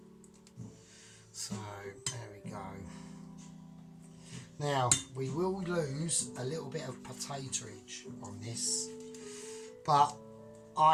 So there we go. Now we will lose a little bit of potatoage on this, but I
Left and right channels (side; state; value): both; identical; correlation 1.00